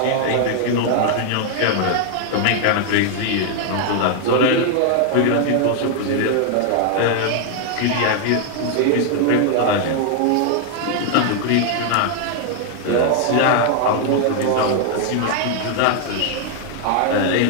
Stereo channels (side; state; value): both; different; correlation 0.00